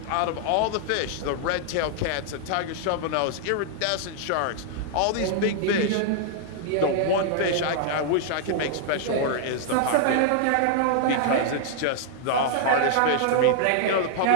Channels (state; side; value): different; both; correlation -0.01